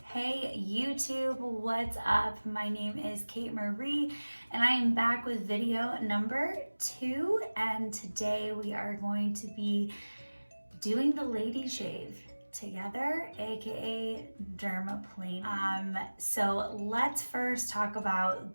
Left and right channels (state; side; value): inverted; both; correlation -1.00